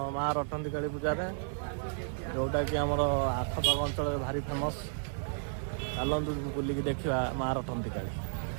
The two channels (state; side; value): silent; left; digital silence